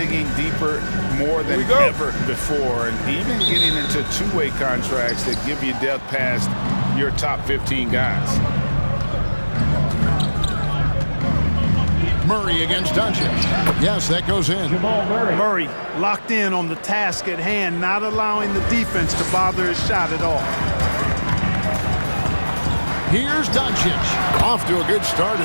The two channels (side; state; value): both; inverted; correlation -1.00